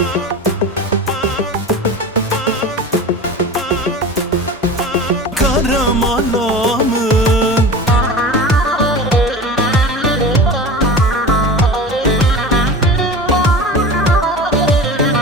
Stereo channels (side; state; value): both; normal; correlation 0.32